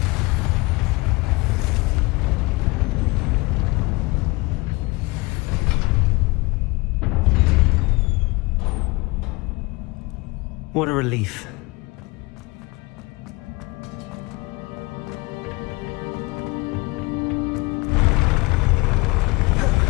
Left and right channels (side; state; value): right; quieter; 24.3 dB